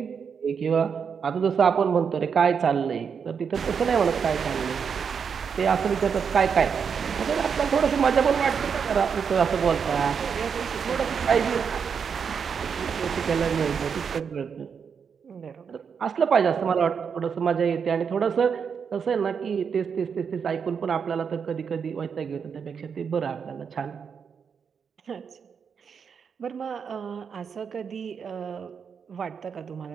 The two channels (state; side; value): quieter; left; 6.6 dB